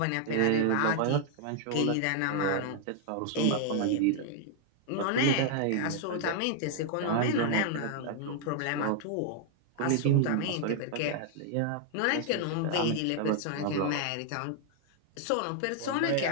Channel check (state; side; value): different; both; correlation 0.00